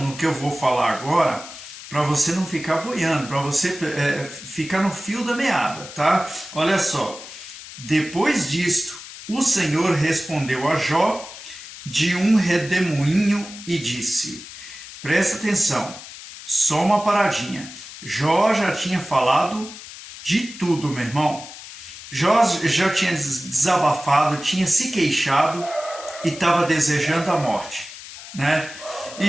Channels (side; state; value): left; noise; hiss, 14 dB below the sound